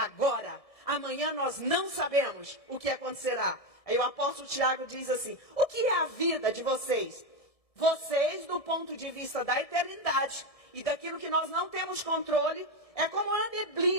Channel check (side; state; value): right; late; 1.7 ms